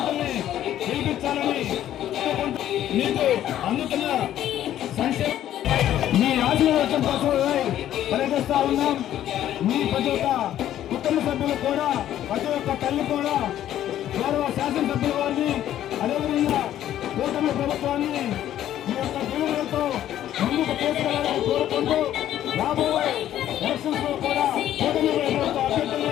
గెలిపించాలని మీకు అందుతున్న సంక్షేమ మీ ఆశీర్వాదం కోసం పనిచేస్తా ఉన్నాం. మీ ప్రతి ఒక్క కుటుంబ సభ్యులు కూడా, ప్రతి ఒక్క తల్లి కూడా, గౌరవ శాసనసభ్యుల వారిని, అదేవిధంగా కూటమి ప్రభుత్వాన్ని మీ యొక్క దీవెనలతో ముందుకు తీసుకెళ్లాలని కోరుకుంటూ, రాబోయే ఎలక్షన్స్ లో కూడా కూటమి ప్రభుత్వ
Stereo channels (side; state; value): right; quieter; 11.9 dB